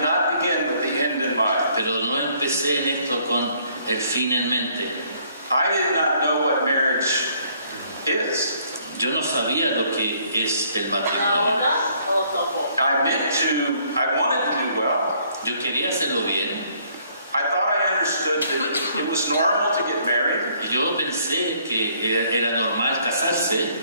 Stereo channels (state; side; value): inverted; both; correlation -0.64